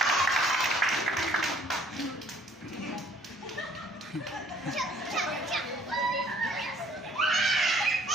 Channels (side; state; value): both; normal; correlation 0.59